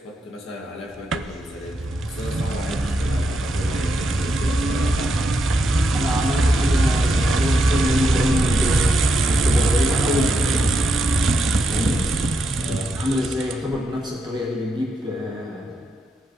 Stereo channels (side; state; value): both; normal; correlation 0.82